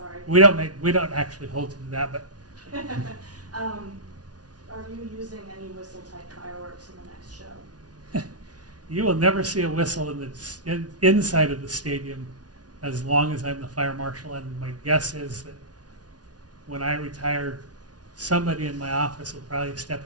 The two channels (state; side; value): late; left; 0.69 ms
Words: We don't actually hold to that, but Are you using any whistle type fireworks in the next show? you will never see a whistle inside of the stadium as long as I'm the fire marshal. And my guess is that when I retire, somebody in my office will probably